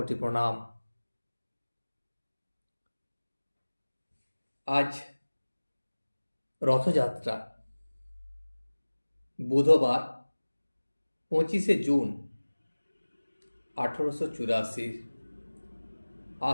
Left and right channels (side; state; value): both; inverted; correlation -1.00